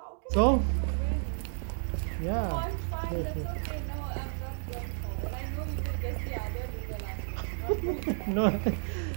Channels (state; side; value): silent; left; digital silence